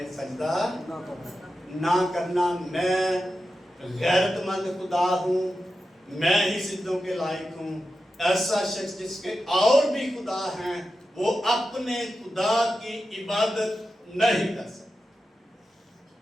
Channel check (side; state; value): both; normal; correlation 0.91